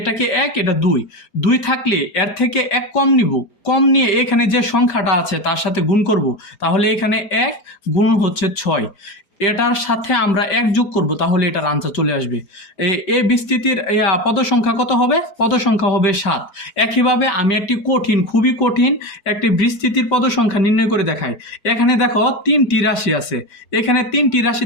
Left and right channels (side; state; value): right; late; 5.1 ms